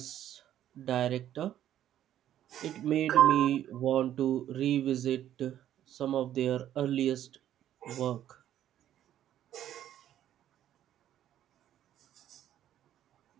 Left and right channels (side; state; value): left; quieter; 11.5 dB